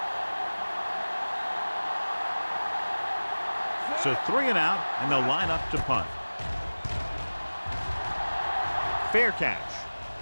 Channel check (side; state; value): both; inverted; correlation -1.00